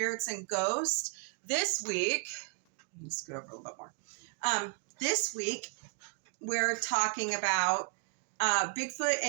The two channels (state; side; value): quieter; left; 37.3 dB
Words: and Ghosts. This week, let me scoot over a little bit more. This week, we're talking about Bigfoot